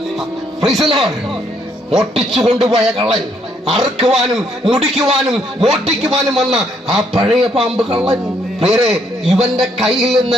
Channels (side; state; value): both; normal; correlation 0.71